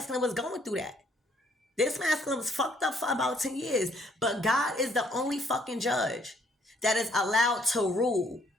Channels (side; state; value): both; normal; correlation 0.66